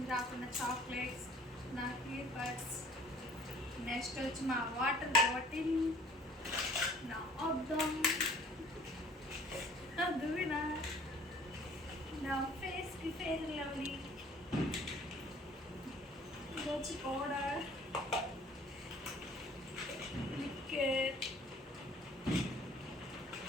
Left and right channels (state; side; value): normal; both; correlation 0.53